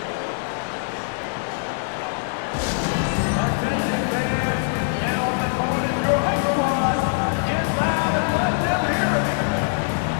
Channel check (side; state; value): right; silent; digital silence